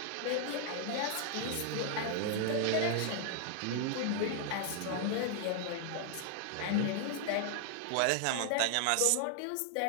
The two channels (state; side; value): different; both; correlation 0.00